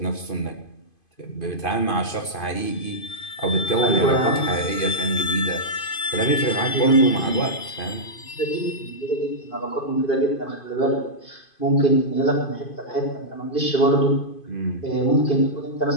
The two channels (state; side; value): late; right; 2.5 ms